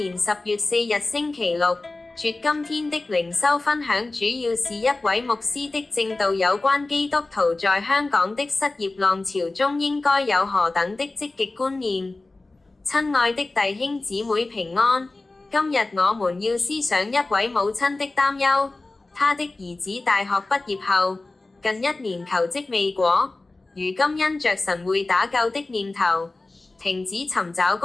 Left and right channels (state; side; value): quieter; right; 3.2 dB